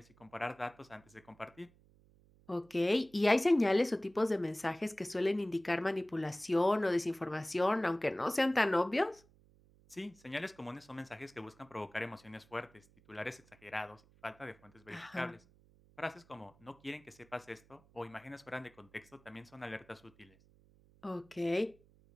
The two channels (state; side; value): noise; right; hum, 28 dB below the sound